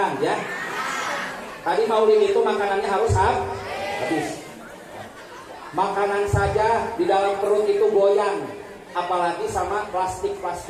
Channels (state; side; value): identical; both; correlation 1.00